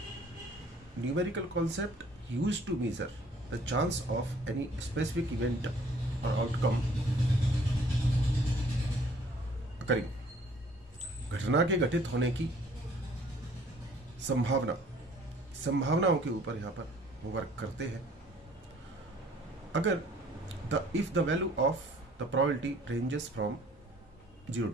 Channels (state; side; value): normal; both; correlation 0.57